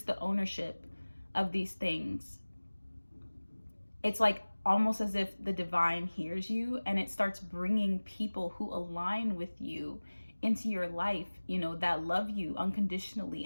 the ownership of these things, it's like almost as if the divine hears you, and it starts bringing people who align with you into your life, you know, that love you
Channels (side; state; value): both; inverted; correlation -1.00